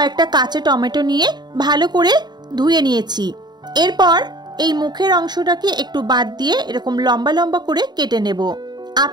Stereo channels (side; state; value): left; late; 0.20 ms